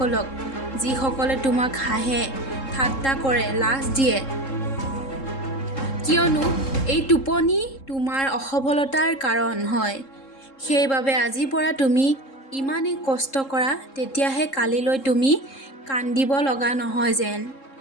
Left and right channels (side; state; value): right; late; 3.7 ms